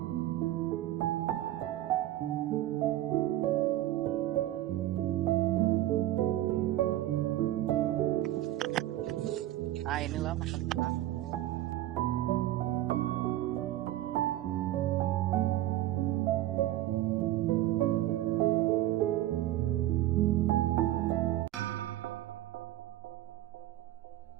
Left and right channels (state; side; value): quieter; left; 14.5 dB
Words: Nah inilah makam kita.